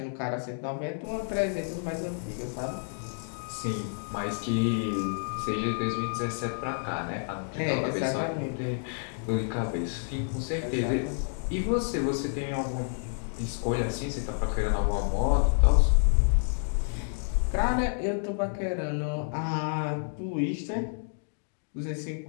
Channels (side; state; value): right; silent; digital silence